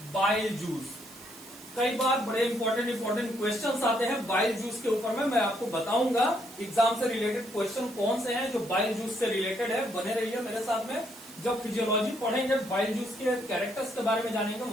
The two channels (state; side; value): noise; right; hiss, 18 dB below the sound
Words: बाइल जूस। कई बार बड़े इंपॉर्टेंट क्वेश्चंस आते हैं बाइल जूस के ऊपर में, मैं आपको बताऊंगा एग्जाम से रिलेटेड क्वेश्चन कौन से हैं जो बाइल जूस से रिलेटेड है। बने रहिए मेरे साथ में। जब फिजियोलॉजी पढ़ेंगे, बाइल जूस के कैरेक्टर्स के बारे में जानेंगे,